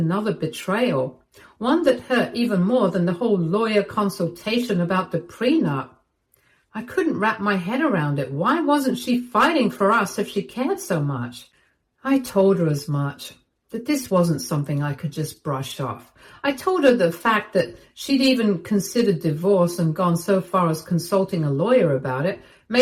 betrayal, one that hurt even more than the whole lawyer consultation about the prenup. I couldn't wrap my head around it. Why wasn't she fighting for us if she cared so much? I told her as much, that this wasn't something I could just brush off. I told her the fact that she'd even considered divorce and gone so far as consulting a lawyer about it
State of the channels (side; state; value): both; identical; correlation 1.00